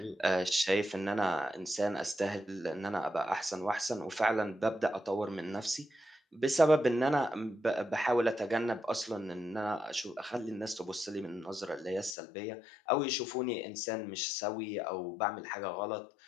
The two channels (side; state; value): right; drops out; at 12.2 s